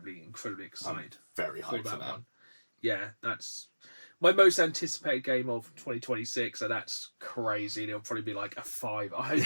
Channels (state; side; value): inverted; both; correlation -1.00